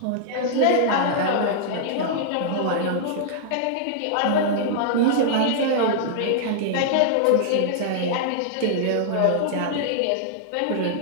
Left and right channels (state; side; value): different; both; correlation -0.01